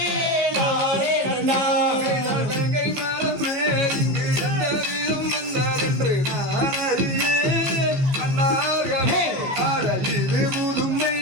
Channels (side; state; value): left; late; 14 ms